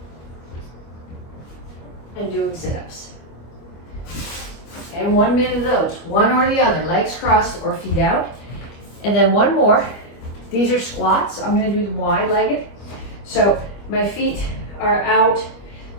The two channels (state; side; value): late; right; 25 ms